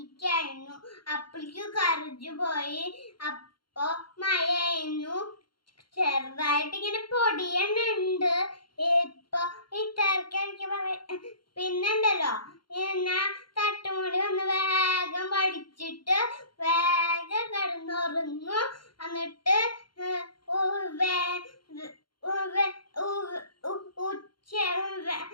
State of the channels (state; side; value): late; right; 0.72 ms